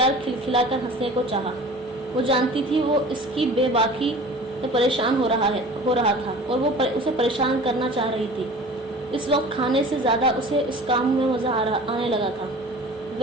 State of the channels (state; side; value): normal; both; correlation 0.42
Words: کھلکھلا کر ہنسنے کو چاہا. وہ جانتی تھی وہ اس کی بے باکی سے پریشان ہو رہا تھا اور وہ اسے پریشان کرنا چاہ رہی تھی. اس وقت کھانے سے زیادہ اسے اس کام میں مزہ آنے لگا تھا.